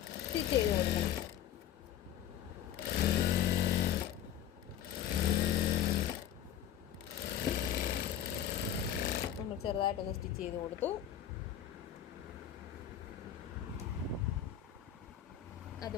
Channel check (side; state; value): right; quieter; 10.4 dB